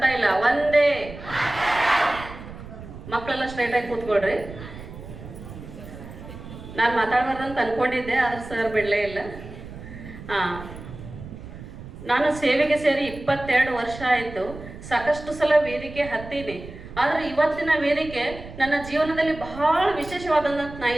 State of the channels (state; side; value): noise; right; rumble, 14 dB below the sound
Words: ಇಲ್ಲ, ವಂದೇ. ಮಕ್ಕಳೆಲ್ಲ ಸ್ಟ್ರೈಟ್ ಆಗಿ ಕೂತ್ಕೊಳ್ರಿ. ನಾನು ಮಾತಾಡಬಾರ್ದಂತ ಅನ್ಕೊಂಡಿದ್ದೆ, ಆದ್ರೆ ಸರ್ ಬಿಡಲೇ ಇಲ್ಲ. ನಾನು ಸೇವೆಗೆ ಸೇರಿ 22 ವರ್ಷ ಆಯಿತು. ಸಾಕಷ್ಟು ಸಲ ವೇದಿಕೆ ಹತ್ತೀನಿ. ಆದರೆ ಇವತ್ತಿನ ವೇದಿಕೆ ನನ್ನ ಜೀವನದಲ್ಲಿ ಬಹಳ ವಿಶೇಷವಾದಂತ ನಾನು